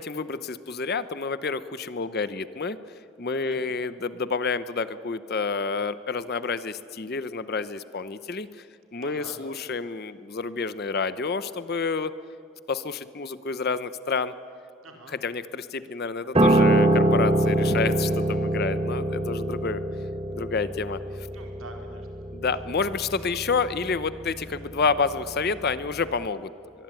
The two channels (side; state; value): both; normal; correlation 0.35